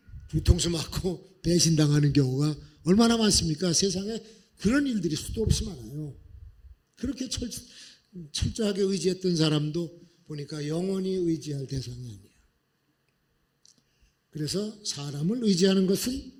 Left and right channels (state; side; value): identical; both; correlation 1.00